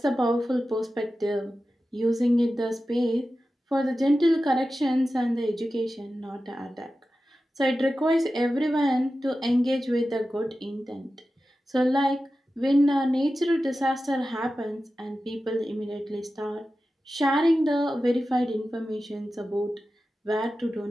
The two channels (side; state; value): both; normal; correlation 0.93